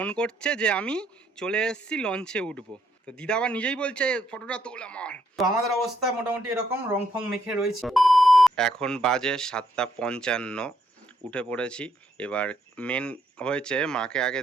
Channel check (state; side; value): normal; both; correlation 0.73